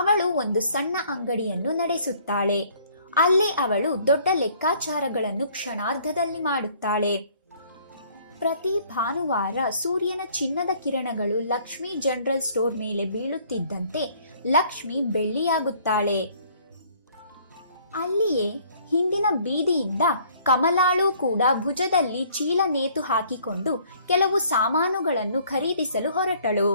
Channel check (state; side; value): inverted; both; correlation -0.59